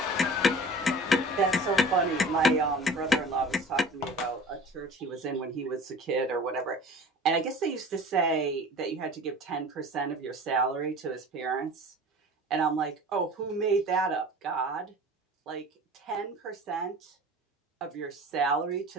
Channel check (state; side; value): normal; both; correlation 0.41